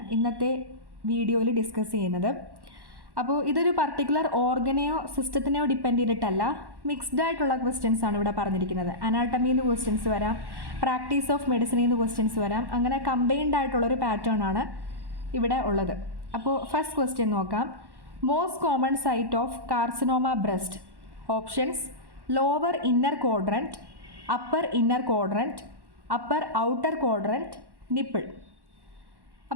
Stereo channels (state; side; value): late; left; 1.1 ms